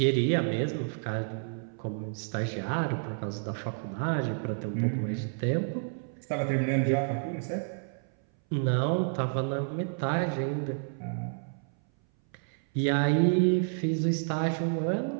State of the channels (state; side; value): silent; left; 58 dB below the other